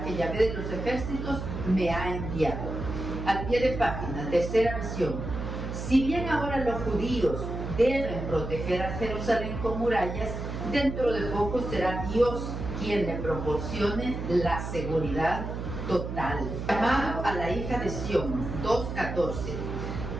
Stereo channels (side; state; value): right; noise; hum, 6 dB below the sound